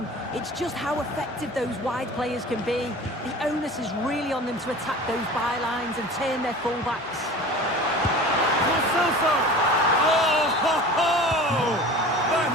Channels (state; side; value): normal; both; correlation 0.39